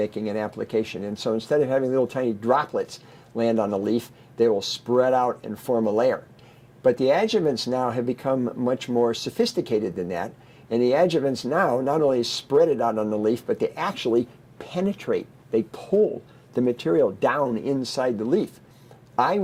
an application. And so instead of having little tiny droplets land on the leaf, they will spread out and form a layer. But the adjuvants now have become much more sophisticated than that, And the adjuvants now not only spread it out on the leaf, but they actually penetrate. They pull the material down inside the leaf. I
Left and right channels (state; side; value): identical; both; correlation 1.00